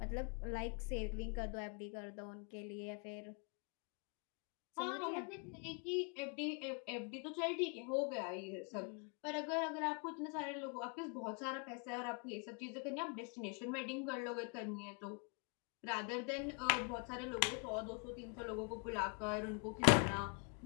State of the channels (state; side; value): quieter; right; 37.3 dB